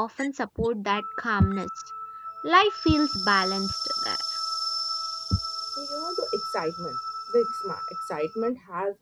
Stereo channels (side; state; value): both; identical; correlation 1.00